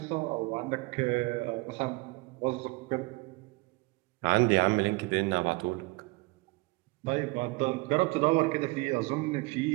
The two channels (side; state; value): left; quieter; 24.5 dB